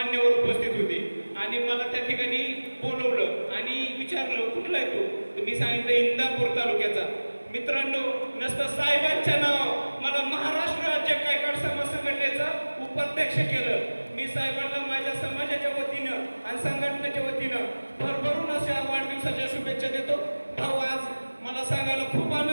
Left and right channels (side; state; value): both; inverted; correlation -1.00